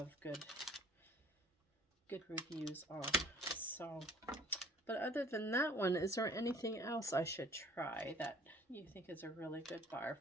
good reviews on. So, but other than that one, is there anything else I should try that you think is a really good bar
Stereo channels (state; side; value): normal; both; correlation 0.52